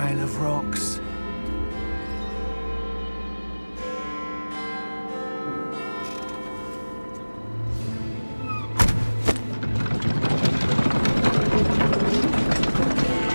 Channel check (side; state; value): both; inverted; correlation -1.00